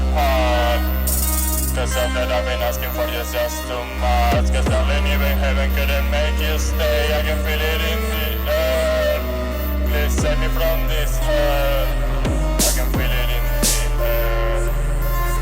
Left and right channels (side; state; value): both; identical; correlation 1.00